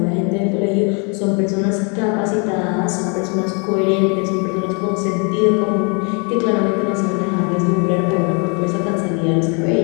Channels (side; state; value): right; quieter; 35.2 dB